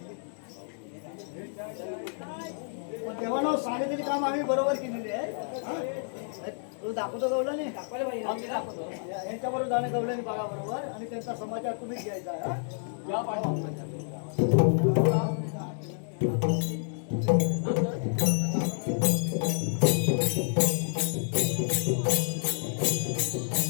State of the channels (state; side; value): silent; right; digital silence